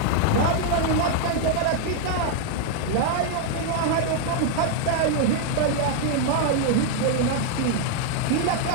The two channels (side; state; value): both; different; correlation 0.00